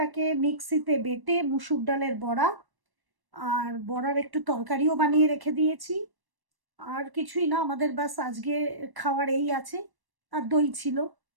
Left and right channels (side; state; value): left; late; 1.1 ms